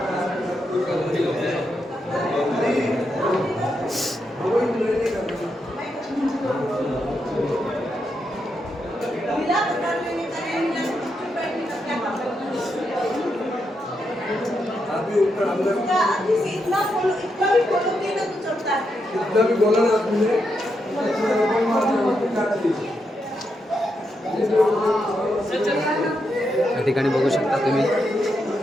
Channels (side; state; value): both; normal; correlation 0.83